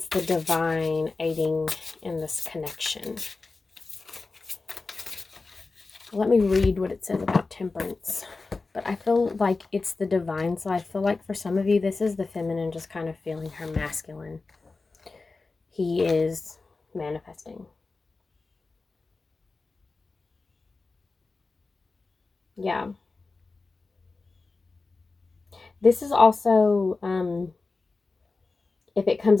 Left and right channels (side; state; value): right; quieter; 3.8 dB